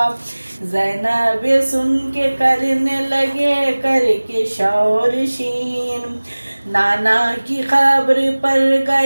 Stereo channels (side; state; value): both; inverted; correlation -1.00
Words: زینب سن کے کرنے لگے کر کے شور شین، نانا کی قبر پر